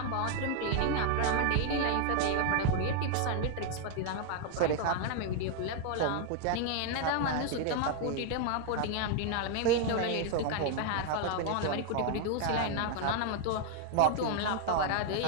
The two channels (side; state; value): both; different; correlation 0.00